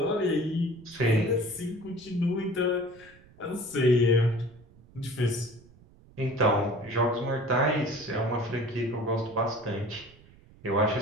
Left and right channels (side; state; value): right; noise; rumble, 25 dB below the sound